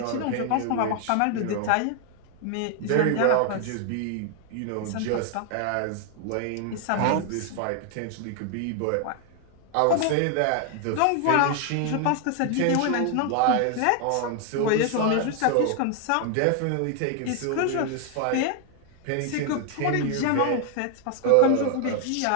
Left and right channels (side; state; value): both; different; correlation 0.00